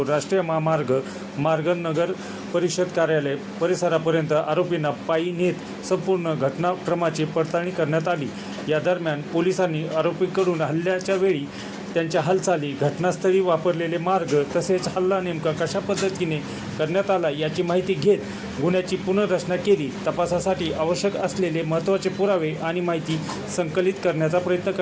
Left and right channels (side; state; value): both; identical; correlation 1.00